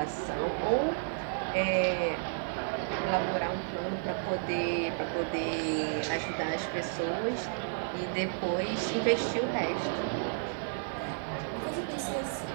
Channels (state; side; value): silent; left; 56 dB below the other